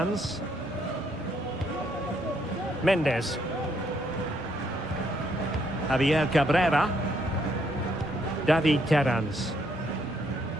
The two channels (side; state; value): both; normal; correlation 0.72